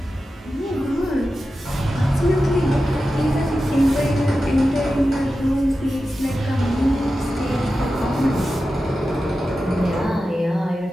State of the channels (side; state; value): both; normal; correlation 0.92